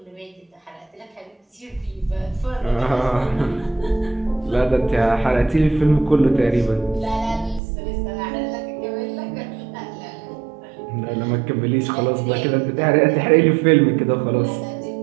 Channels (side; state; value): left; drops out; at 7.6 s